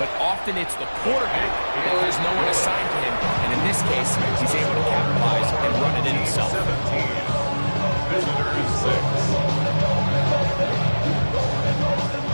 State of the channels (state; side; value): inverted; both; correlation -1.00